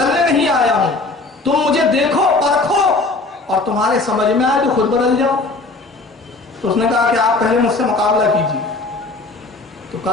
نہیں آیا ہوں، تم مجھے دیکھو، پرکھو، اور تمہارے سمجھ میں آئے تو خود بدل جاؤ۔ تو اس نے کہا کہ آپ پہلے مجھ سے مقابلہ کیجیے۔ تو تو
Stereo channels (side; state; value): right; quieter; 3.4 dB